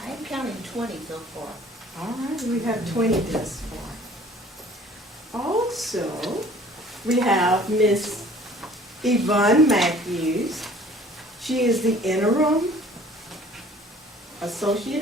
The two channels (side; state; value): both; normal; correlation 0.51